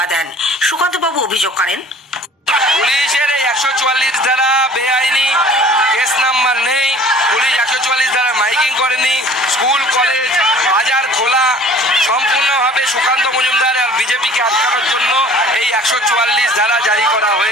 দেন। সুকান্ত বাবু অভিযোগ করেন, পুলিশের 144 ধারা বেআইনি, কেস নাম্বার নেই, পুলিশ 144 ধারা মাইকিং করেনি, স্কুল কলেজ বাজার খোলা, সম্পূর্ণভাবে সুকান্ত মজুমদার আর বিজেপিকে আটকানোর জন্য এই 144 ধারা জারি করা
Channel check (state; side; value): normal; both; correlation 0.49